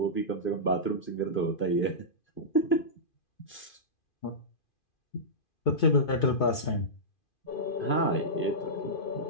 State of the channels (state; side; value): late; right; 2.4 ms